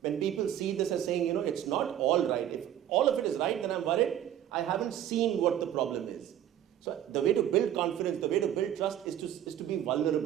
When people see this as saying, it's not all right. If all of it is right, then I'm worried. I haven't seen what the problem is. So the way to build confidence, the way to build trust is to be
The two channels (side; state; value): left; quieter; 11.1 dB